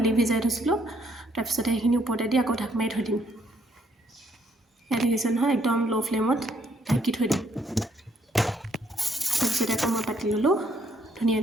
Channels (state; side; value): normal; both; correlation 0.69